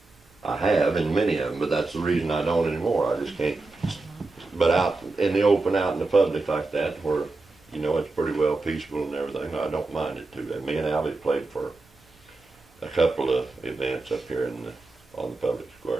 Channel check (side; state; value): left; quieter; 3.4 dB